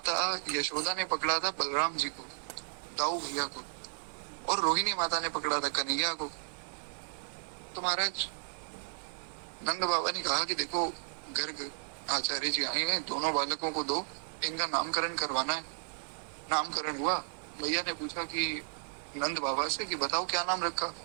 यशोदा ने पकड़ा था बलराम जी को, दाऊ भैया को, और रोहिणी माता ने पकड़ा था कन्हैया को। तो महाराज नंद बाबा ने कहा कि देखो गर्ग आचार्य जी आए हैं, दोनों बालकों को दो, इनका नामकरण करवाना है। नामकरण हुआ। भैया ने पूछा कि नंद बाबा से कि बताओ क्या नाम रखा।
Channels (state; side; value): silent; left; digital silence